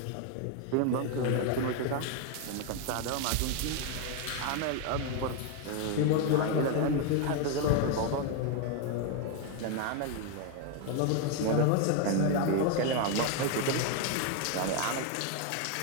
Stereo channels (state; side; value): different; both; correlation 0.01